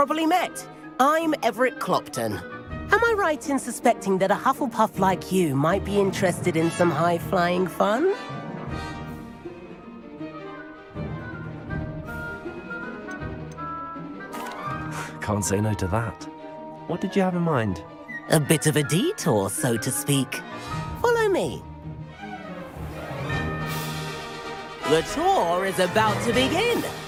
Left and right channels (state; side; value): identical; both; correlation 1.00